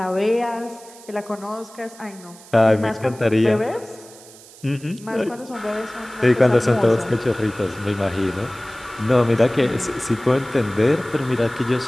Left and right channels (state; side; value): noise; right; hiss, 21 dB below the sound